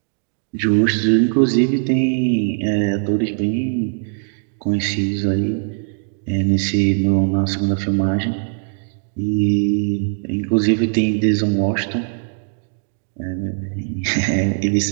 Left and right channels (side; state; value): left; silent; 66 dB below the other